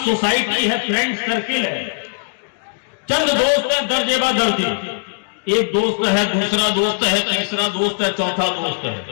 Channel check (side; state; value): right; silent; digital silence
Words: سوسائٹی ہے، فرینڈ سرکل ہے، چند دوست ہیں درجے با درجے، ایک دوست ہے، دوسرا دوست ہے، تیسرا دوست ہے، چوتھا دوست